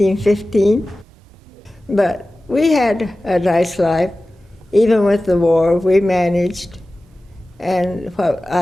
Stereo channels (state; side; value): normal; both; correlation 0.96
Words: But we had a nice life. Even with the war, we managed. And what